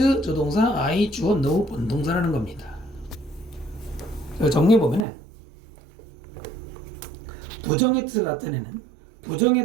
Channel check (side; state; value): left; drops out; at 5.1 s